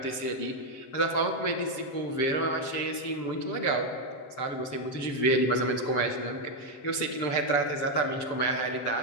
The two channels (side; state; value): right; late; 7.5 ms